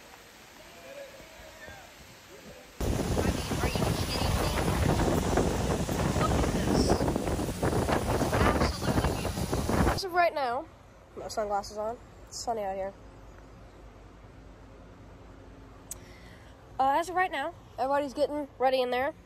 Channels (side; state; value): both; identical; correlation 1.00